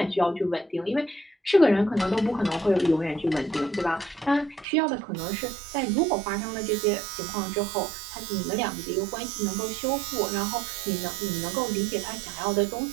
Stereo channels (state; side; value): drops out; left; at 4.7 s